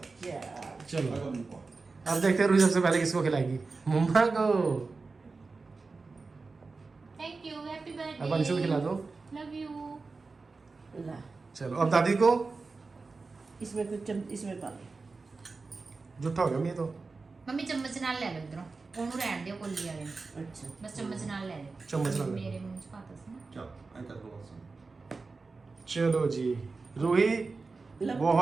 चलो अब देखते हैं रूही सबसे पहले किसको खिलाएगी। मम्मा को। Thank you, happy birthday. अब अंशु को खिला दो। Love you. ला चलो अब दादी को। इसमें कुछ इसमें पा लो। जुट्टा हो गया मैं तो। मम्मी चम्मच नाल ले लो इधरों, ਉਹਨੂੰ ਰਹਿਣ ਦਿਓ ਕੋਲੀ ਵਾਲੇ ਨੂੰ। अच्छा बस चम्मच नाल ले लो। चम्मच नाल ले लो। मेरे मुंह 'ਚ ਪਾਤਾ ਸੀ ਨਾ। चलो जी रूही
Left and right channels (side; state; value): left; quieter; 4.0 dB